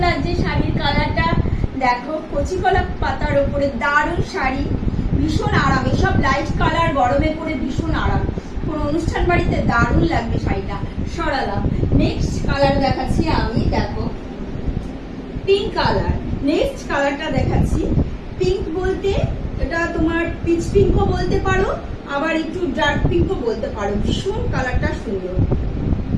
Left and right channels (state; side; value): identical; both; correlation 1.00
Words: লাগছে। শাড়ির কালারটা দেখো, কচি কলা পাতার উপরে দারুণ শাড়ি, ভীষণ আরাম। এসব লাইট কালার গরমে পরে ভীষণ আরাম, কোন অনুষ্ঠান বাড়িতে দারুণ লাগবে শাড়িটা। সরালাম। নেক্সট কালার দেখাচ্ছি আমি, দেখো পিঙ্ক কালার। নেক্সট কালারটা দেখাচ্ছি। পিঙ্ক বলতে এটা তোমার পিচ পিঙ্কও বলতে পারো, আবার একটু ডার্ক পিঙ্কও বলতে পারো। ভীষণ কালারটা সুন্দর।